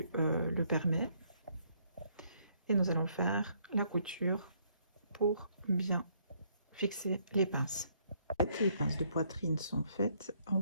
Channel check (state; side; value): inverted; both; correlation -0.69